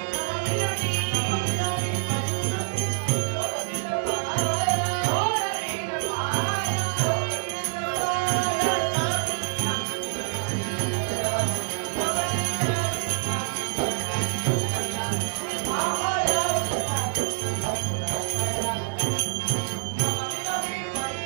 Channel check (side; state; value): left; silent; digital silence